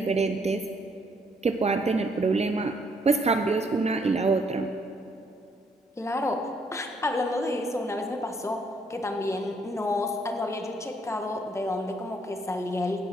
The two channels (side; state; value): both; normal; correlation 0.69